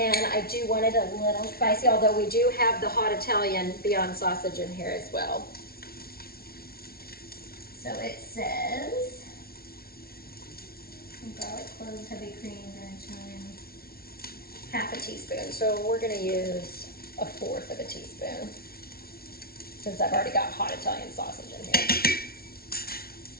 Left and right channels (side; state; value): right; late; 0.44 ms